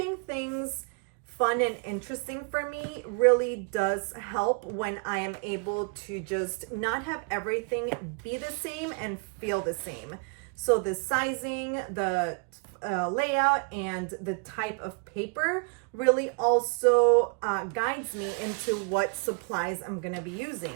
things fun and interesting for me really does help when I am able to just not have everything be the same and feel the same. So the sizing, the layout, and the type of paper really also guides me into what supplies I'm going to be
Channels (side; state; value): left; quieter; 38.0 dB